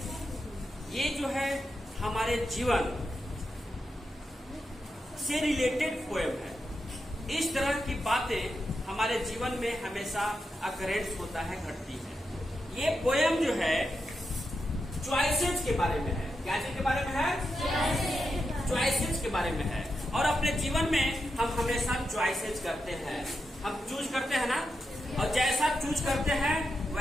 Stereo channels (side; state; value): both; normal; correlation 0.87